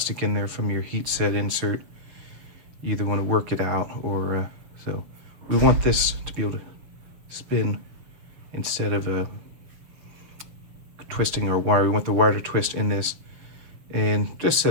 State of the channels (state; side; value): late; left; 6.9 ms